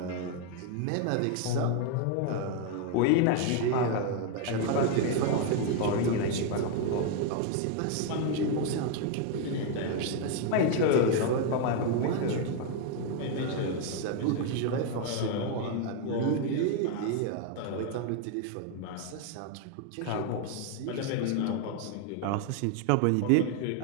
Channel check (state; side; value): different; both; correlation 0.01